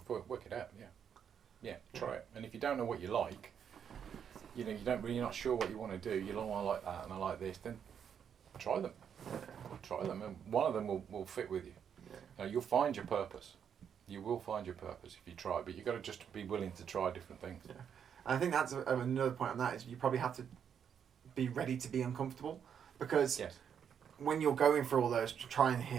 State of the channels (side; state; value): left; quieter; 8.0 dB